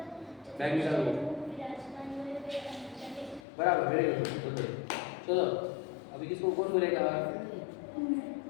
बैग निकालो। बराबर, वेरी गुड। चलो अभी किसको कौन बोलेगा?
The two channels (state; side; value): drops out; right; at 3.4 s